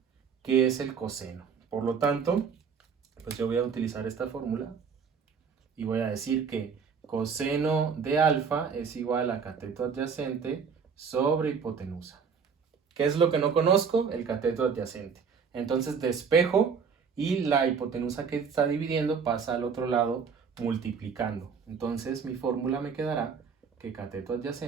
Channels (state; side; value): quieter; left; 6.1 dB